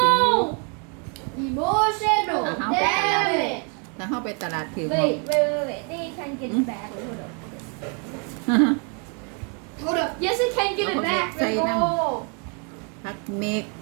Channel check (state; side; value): quieter; left; 37.7 dB